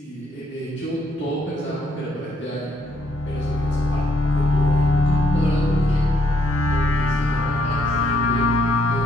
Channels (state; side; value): normal; both; correlation 0.71